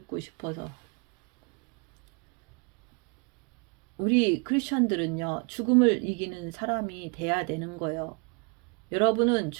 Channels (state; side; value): quieter; left; 34.1 dB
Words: 싶어서. 우리 크리스천들은요, 죽음을 이기는 사람이 돼야 되는 거예요. 여러분은